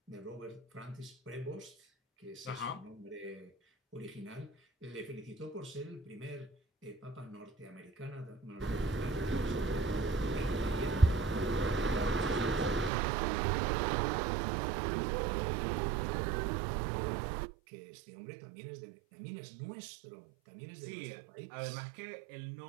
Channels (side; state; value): left; drops out; at 12.9 s